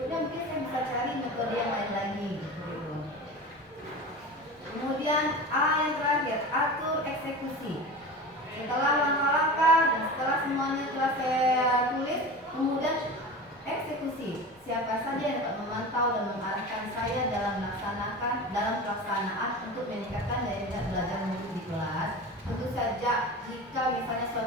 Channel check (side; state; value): both; normal; correlation 0.31